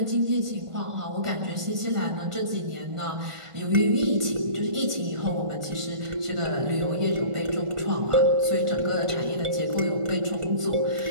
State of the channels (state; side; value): late; left; 1.5 ms